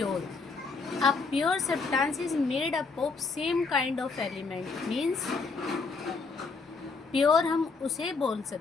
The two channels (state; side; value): quieter; right; 4.4 dB